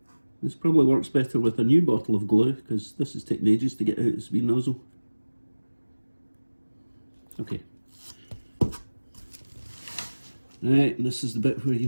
This probably works better with a new bottle of glue because this is taking ages to get out its wee nozzle. Okay. Right, and this is the bit where you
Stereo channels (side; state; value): both; inverted; correlation -1.00